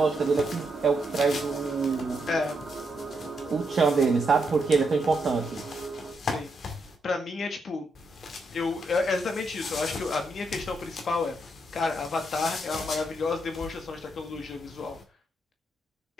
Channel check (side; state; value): both; normal; correlation 0.80